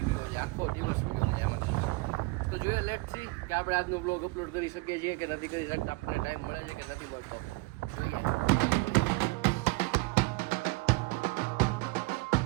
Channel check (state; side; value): quieter; left; 23.8 dB